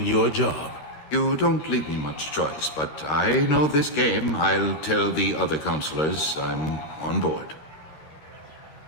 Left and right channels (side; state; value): right; late; 13 ms